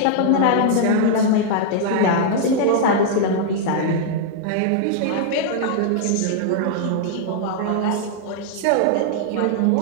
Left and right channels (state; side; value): different; both; correlation -0.01